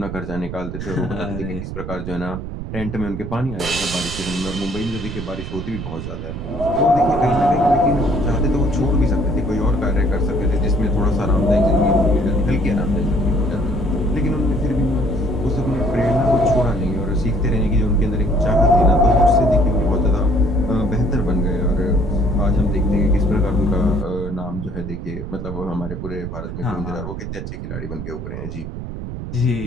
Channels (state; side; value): noise; right; rumble, 7 dB below the sound